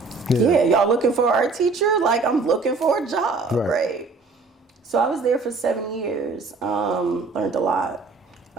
yeah, y'all looking for an art teacher? Like, I'm looking for a job, right? So I was there for 7 years, learned a lot.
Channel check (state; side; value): quieter; left; 4.0 dB